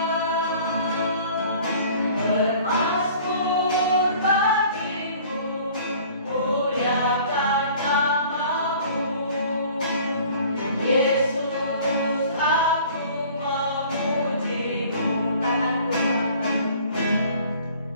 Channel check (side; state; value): both; inverted; correlation -0.50